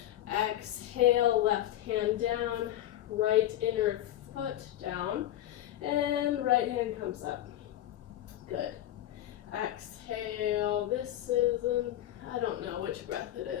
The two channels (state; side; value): quieter; right; 13.0 dB